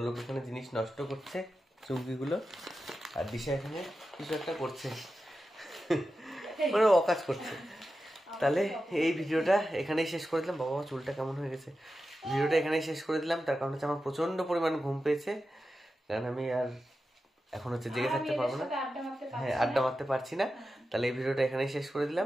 এখানে জিনিস নষ্ট করছে চুমকিগুলো, আর দিশা এখানে কিছু একটা করছে, মানে অকাজ করছে। তাহলে এই ভিডিওটা এখানেই শেষ করে দিলাম। বাবা চুলটা কেমন হয়ে গেছে। ভিডিওটা এখানেই শেষ করে দিলাম, তার কারণ হচ্ছে আমার প্রচন্ড পরিমাণ ঘুম পেয়েছে, কারণ আমি আর এখন হচ্ছে জেগে থাকতে পারবো না। হ্যাঁ, আড্ডা মারতে পারছি না। তাহলে এই ভিডিওটা এখানেই শেষ করে দিলাম।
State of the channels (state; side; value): normal; both; correlation 0.92